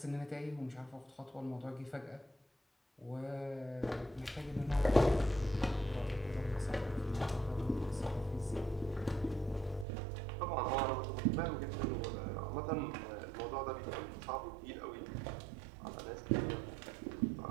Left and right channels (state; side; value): drops out; left; at 9.9 s